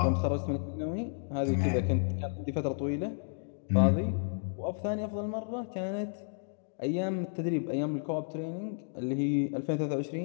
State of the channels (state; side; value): silent; right; digital silence